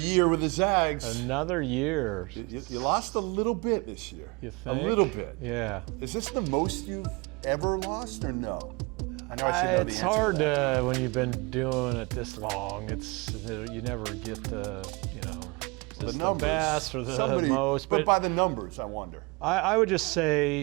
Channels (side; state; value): left; quieter; 27.1 dB